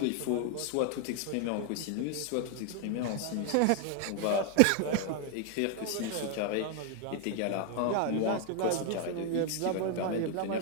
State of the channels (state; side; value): different; both; correlation 0.00